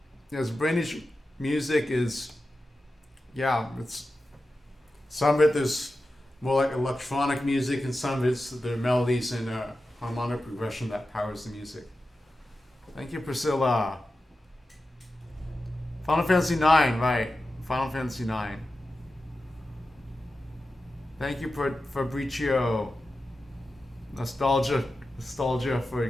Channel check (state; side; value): normal; both; correlation 0.93